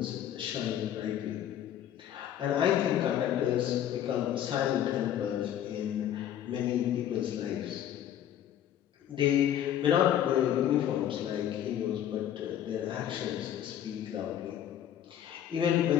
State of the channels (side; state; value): right; quieter; 10.7 dB